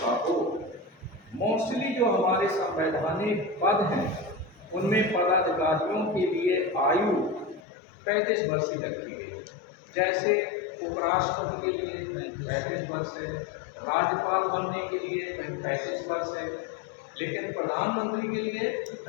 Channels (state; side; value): drops out; right; at 7.6 s